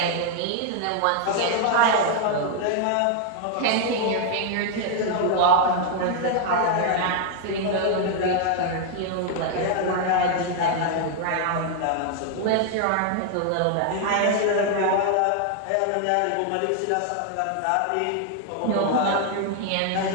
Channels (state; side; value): different; both; correlation 0.00